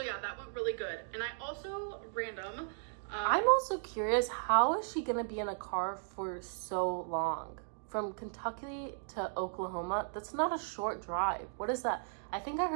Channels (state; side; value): silent; left; digital silence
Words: yeah, that went really good. And I also I'm also curious, how is she gonna be in a car for so long? From Kentucky to Oklahoma, that's not a short drive. What is that? I think I